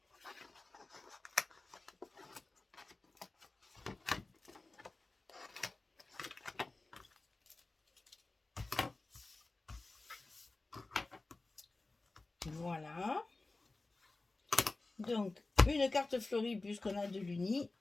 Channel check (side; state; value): right; quieter; 3.3 dB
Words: Voilà. Donc, une carte fleurie puisqu'on a de l'uni.